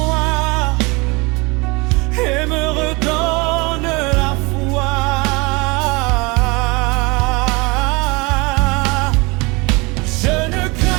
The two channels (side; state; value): left; quieter; 26.5 dB